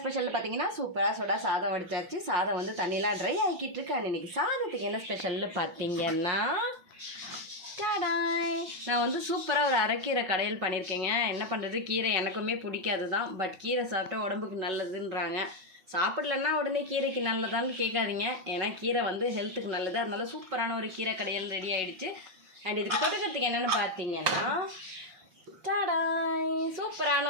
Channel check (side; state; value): left; late; 5.4 ms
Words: பார்த்தீங்கன்னா சூப்பராக சுட சாதம் வடிச்சாச்சு. சாதம் வந்து தண்ணிலாம் ட்ரை ஆகிக்கிட்டு இருக்கு. அண்ட் இன்றைக்கி சாதத்துக்கு என்ன ஸ்பெஷல்னு பார்த்தீங்கன்னா டாடாய், நான் வந்து சூப்பராக ஒரு அரைக்கீரை கடையில் பண்ணியிருக்கேங்க. என்ன பண்ணுறது, கீரை எனக்குமே பிடிக்காது தான். பட் கீரை சாப்பிட்டா உடம்புக்கு நல்லதுன்றாங்க. சாப்பிடலன்னா உடனே கீரைக்கு நல்லதான்னு கேட்காதீங்க. ஏன்னா கீரை வந்து ஹெல்த்துக்கு நல்லது. அதனால சூப்பரான ஒரு கீரை கடையில் ரெடி ஆகிடுச்சு. அண்ட் இதுக்கு தொட்டுக்கிறதுக்கு என்னென்னு பார்த்தீங்கன்னா டாடாய், சூப்பரான